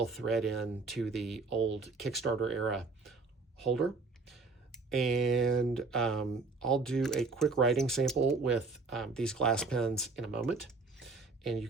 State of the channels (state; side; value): quieter; left; 3.9 dB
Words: thread in to the old Kickstarter era holder. And I'll do a quick writing sample with these glass pens in a moment, and you